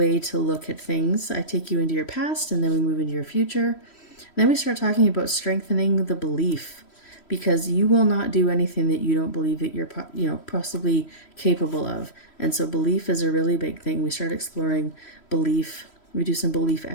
to look at things. I take you into your past, and then we move into your future. Then we start talking about strengthening the belief, because you will not do anything that you don't believe that you're possibly capable of. And so belief is a really big thing. We start exploring belief. We do some belief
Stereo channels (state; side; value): late; right; 3.1 ms